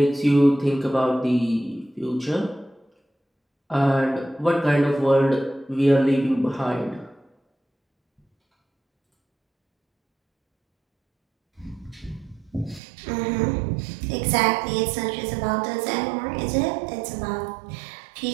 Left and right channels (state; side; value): drops out; left; at 12.8 s